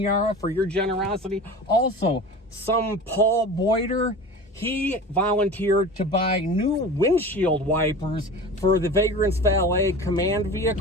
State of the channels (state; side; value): normal; both; correlation 0.35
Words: for your generosity. Also, some Paul Boyder. He volunteered to buy new windshield wipers for the Vagrant's Valet command